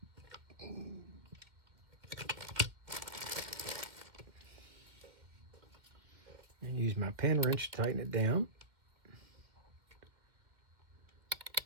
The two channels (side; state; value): left; late; 2.4 ms